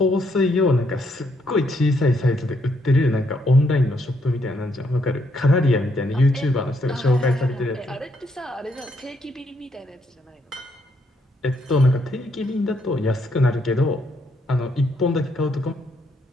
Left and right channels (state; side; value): normal; both; correlation 0.74